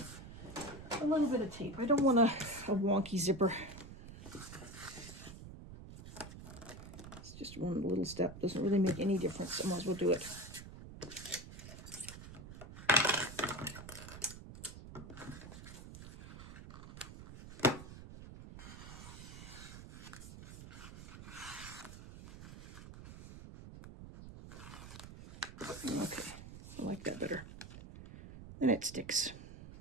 a little bit of tape. I don't want a wonky zipper. Just one little step, doesn't really make any difference. I might as well do it. Okay, I like that better. And it sticks.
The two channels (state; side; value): noise; right; rumble, 13 dB below the sound